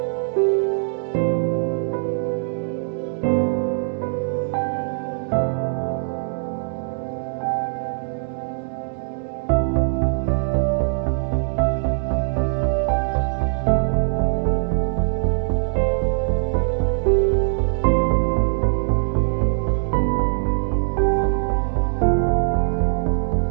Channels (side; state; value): left; silent; digital silence